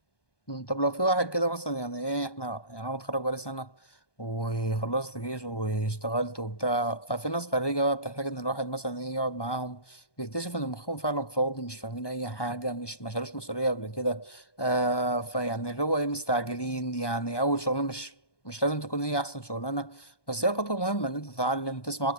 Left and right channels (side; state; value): right; late; 1.2 ms